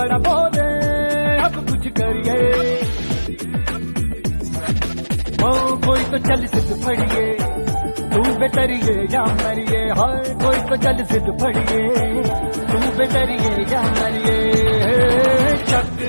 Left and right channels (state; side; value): inverted; both; correlation -1.00